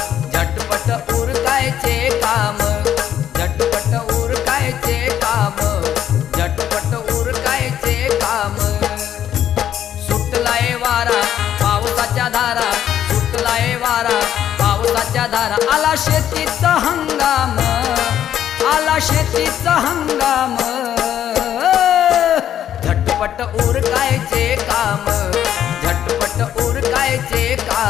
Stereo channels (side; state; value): right; quieter; 10.5 dB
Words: झटपट उरकायचे काम, झटपट उरकायचे काम, झटपट उरकायचे काम। सुटलाय वारा पावसाच्या धारा, सुटलाय वारा पावसाच्या धारा, आला शेतीचा हंगाम, आला शेतीचा हंगाम, झटपट उरकायचे काम,